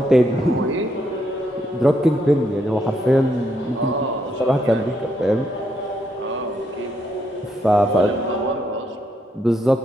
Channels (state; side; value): normal; both; correlation 0.76